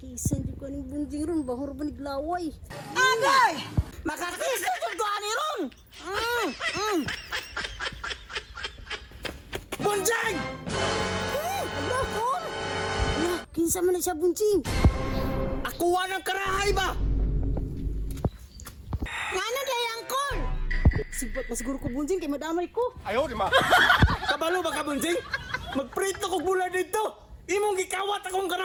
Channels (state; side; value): identical; both; correlation 1.00